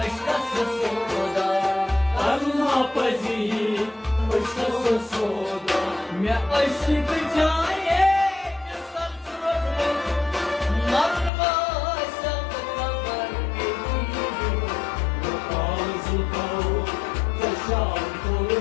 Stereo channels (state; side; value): drops out; right; at 11.3 s